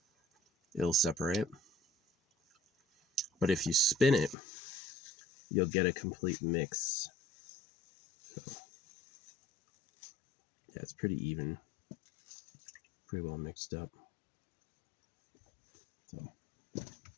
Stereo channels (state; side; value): drops out; right; at 4.4 s